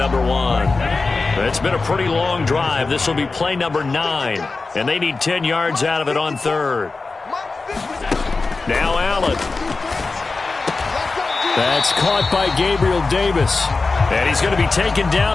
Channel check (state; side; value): quieter; right; 3.9 dB